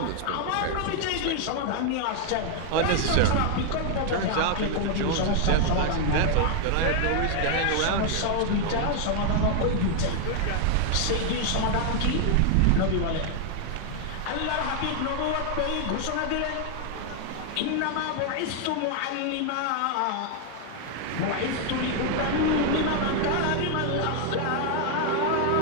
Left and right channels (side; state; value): both; different; correlation 0.00